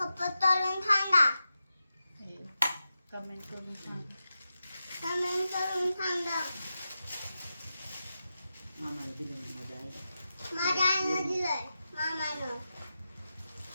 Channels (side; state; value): both; inverted; correlation -0.91